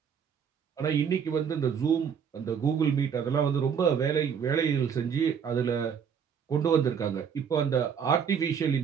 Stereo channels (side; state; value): left; quieter; 7.2 dB